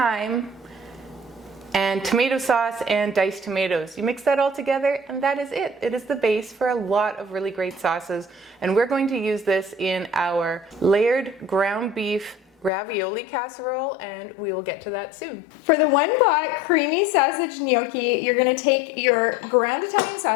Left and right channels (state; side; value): drops out; right; at 12.7 s